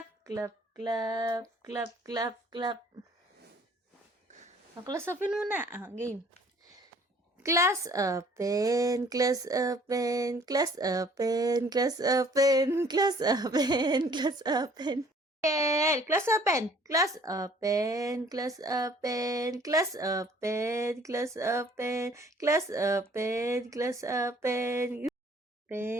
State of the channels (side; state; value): both; normal; correlation 0.56